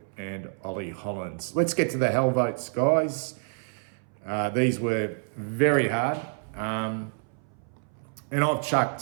and Ollie Hollands. Let's get to the hell votes, guys. These were very hard. And I've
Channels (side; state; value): left; silent; 59 dB below the other